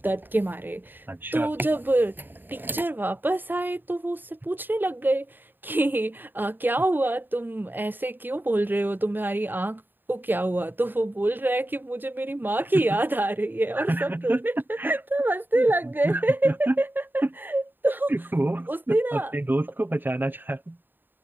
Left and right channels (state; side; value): late; left; 0.093 ms